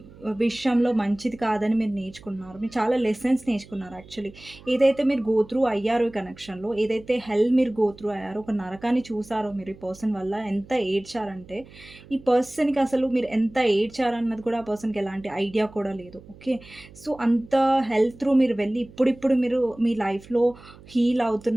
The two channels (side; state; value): right; noise; hum, 21 dB below the sound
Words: విషయంలో మంచిది కాదని మీరు నేర్చుకున్నారు. మీరు చాలా లెసన్స్ నేర్చుకున్నారు యాక్చువల్లీ. ఏదైతే మీరు గో త్రూ అయ్యారో ఈ కనెక్షన్‌లో, ఏదైతే హెల్ మీరు గో త్రూ అయ్యారో, ఒక నరకాన్ని చూసారో మీరు ఈ పర్సన్ వల్ల, ఎంత ఏడ్చారంటే, ఈ పర్సన్‌కి అసలు మీరు ఎంత ఏడ్చారన్నది కూడా ఆ పర్సన్‌కి ఎలాంటి ఐడియా కూడా లేదు. ఓకే, సో అంత హెల్ త్రూ మీరు వెళ్ళి ఇప్పుడిప్పుడు మీరు మీ లైఫ్‌లో హీల్